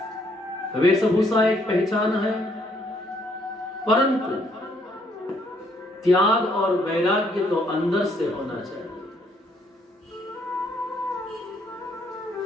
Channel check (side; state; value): both; normal; correlation 0.69